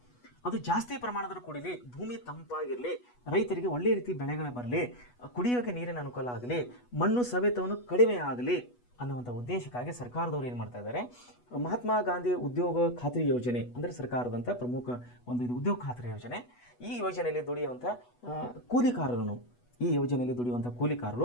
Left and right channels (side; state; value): right; late; 8.2 ms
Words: ಅದು ಜಾಸ್ತಿ ಪ್ರಮಾಣದಲ್ಲಿ ಕುಡಿಲಿ, ಭೂಮಿ ತಂಪಾಗಿರಲಿ, ರೈತರಿಗೆ ಒಳ್ಳೆಯ ರೀತಿ ಬೆಳೆಗಳು ಬರಲಿ, ಕುಡಿಯೋಕ್ಕೆ ನೀರಿನ ಅನುಕೂಲ ಆಗಲಿ, ಮಣ್ಣು ಸವೆತವನ್ನು ಕಡಿಮೆ ಆಗಲಿ ಅನ್ನುವಂಥ ಉದ್ದೇಶಕ್ಕಾಗಿ ಸರ್ಕಾರದವರು ಏನು ಮಾಡ್ತಾ ಇದ್ದಾರೆ, ಮಹಾತ್ಮ ಗಾಂಧಿ ಉದ್ಯೋಗ ಖಾತ್ರಿ ಯೋಜನೆ ಅಂದರೆ ಸರ್ಕಾರದಂಥ ಪ್ರಮುಖ ಒಂದು ಇದು ಉದ್ಯೋಗ ಖಾತ್ರಿ ಯೋಜನೆ. ಈ ಯೋಜನೆಯಲ್ಲಿ ದುಡಿಯುವಂಥ